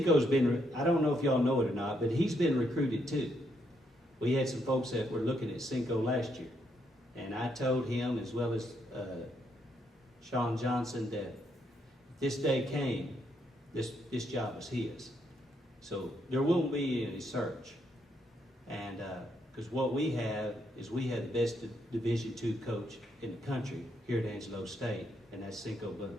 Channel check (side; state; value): both; normal; correlation 0.76